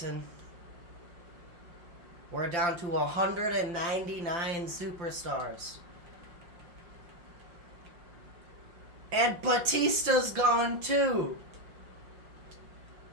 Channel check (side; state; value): left; late; 5.6 ms